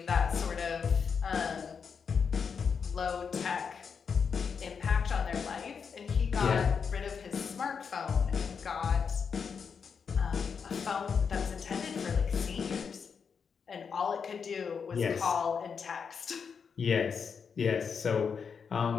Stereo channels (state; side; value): quieter; right; 6.2 dB